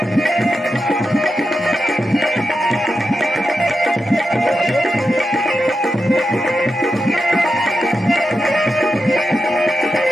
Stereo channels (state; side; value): normal; both; correlation 0.89